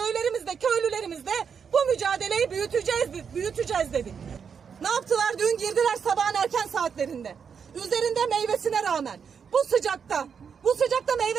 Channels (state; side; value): quieter; left; 6.7 dB